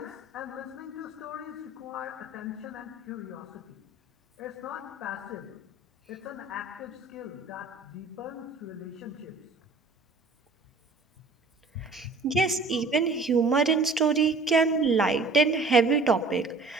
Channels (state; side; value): quieter; left; 3.5 dB